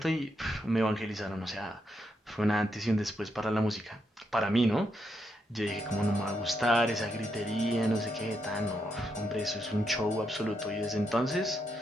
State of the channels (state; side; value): normal; both; correlation 0.81